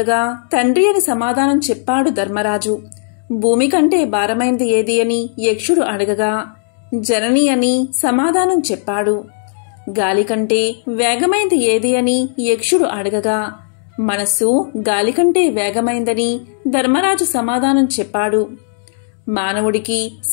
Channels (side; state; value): right; silent; digital silence